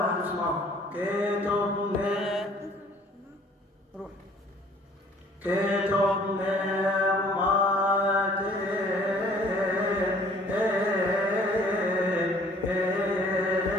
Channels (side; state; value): both; normal; correlation 0.55